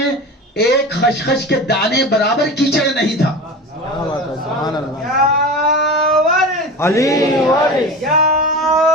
एक खसखस के दाने बराबर कीचड़ नहीं था। क्या बात है, सुभान अल्लाह। या वारिस, अली वारिस, या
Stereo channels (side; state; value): both; normal; correlation 0.30